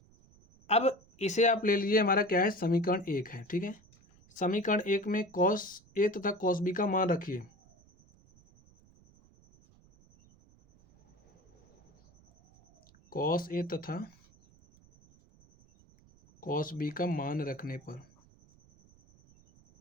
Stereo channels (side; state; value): right; noise; rumble, 29 dB below the sound